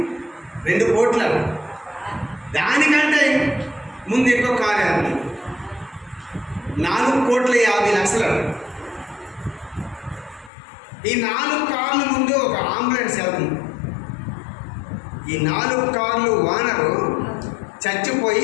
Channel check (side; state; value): right; drops out; at 10.5 s